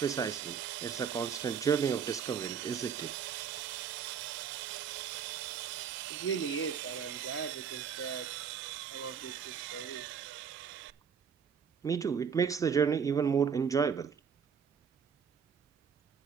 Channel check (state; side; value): quieter; left; 7.0 dB